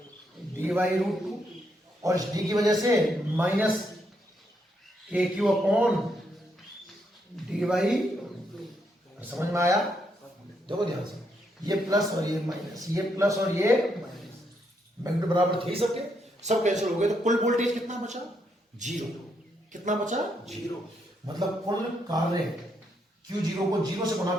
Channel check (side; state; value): both; normal; correlation 0.77